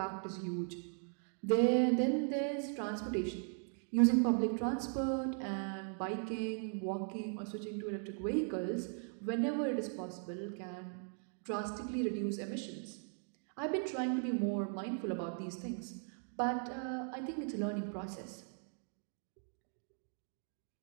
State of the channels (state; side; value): silent; left; 52 dB below the other